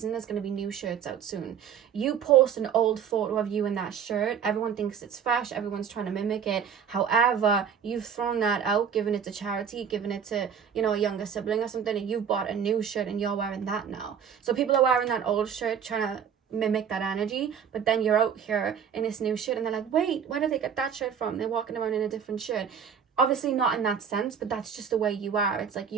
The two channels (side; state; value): left; quieter; 7.6 dB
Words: There's going to be new shirts out soon. You post an old photo of you in that shirt, everyone thinks it's fresh, everyone's trying to mimic it. However, you've thrown that out, given it to charity, given it to, you know, a younger sibling or something, and you've bought a new shirt and you're wearing that now. So people are wearing that old shirt trying to mimic that energy, but then you're out here in this new shirt and they're like, wait, where did they get that shirt from? They're walking around in a different shirt. Obviously not in that sense, but that's just the way you are. It's like